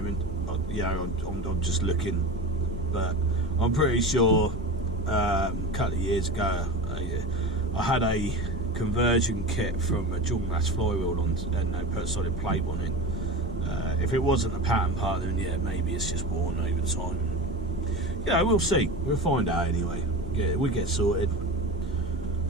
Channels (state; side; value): normal; both; correlation 0.29